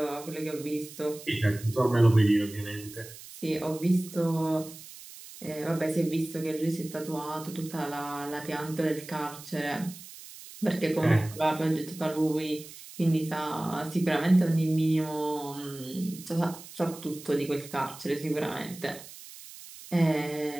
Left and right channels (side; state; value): right; noise; hiss, 16 dB below the sound